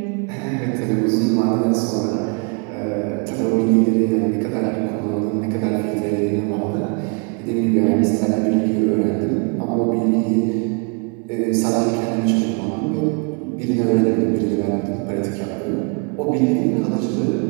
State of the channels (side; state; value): left; quieter; 34.9 dB